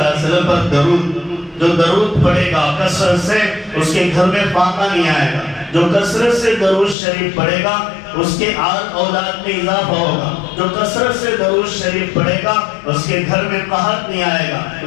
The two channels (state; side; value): drops out; right; at 7.0 s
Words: علیہ وسلم پر درود، جو درود پڑھے گا کثرت سے اس کے گھر میں فاقہ نہیں آئے گا، جو کثرت سے درود شریف پڑھے گا اس کے آل اولاد میں اضافہ ہوگا، جو کثرت سے درود شریف پڑھے گا اس کے گھر میں قحط نہیں آئے گا،